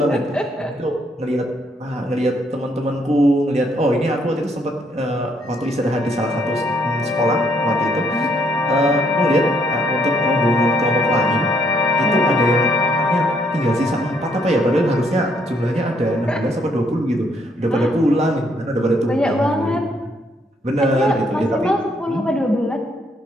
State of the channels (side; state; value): both; normal; correlation 0.70